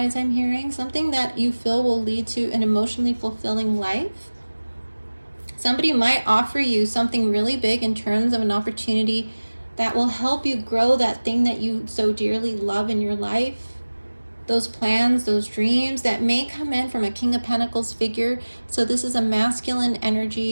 I'm hearing something that you feel will lead to an emotionally fulfilling life. Somebody might offer you something really big in terms of an opportunity that will help you grow that thing that you so dearly love in your life. Those plans, those dreams that may come in from a King of Pentacles figure. So this is a masculine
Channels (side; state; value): both; inverted; correlation -1.00